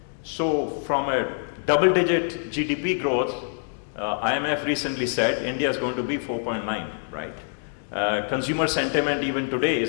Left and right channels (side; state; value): right; silent; digital silence